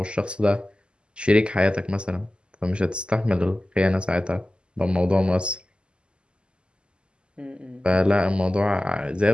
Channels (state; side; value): late; left; 0.050 ms